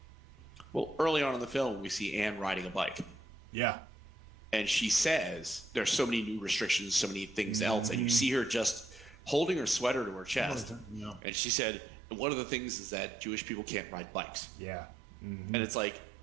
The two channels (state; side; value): drops out; left; at 11.2 s